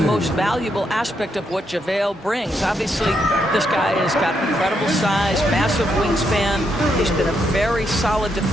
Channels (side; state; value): both; normal; correlation 0.79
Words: valuable aspect of what JaVale brings. Obviously, this guy has got incredible size, massive wingspan. He's been a very solid